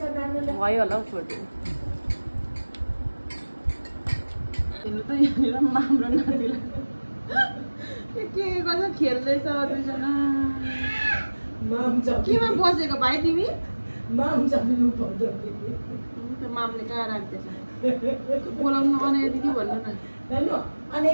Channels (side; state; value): both; inverted; correlation -1.00